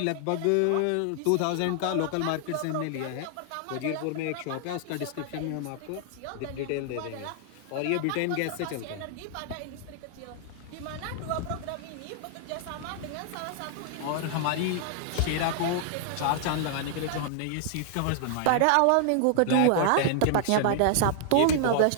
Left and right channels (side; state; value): both; different; correlation 0.00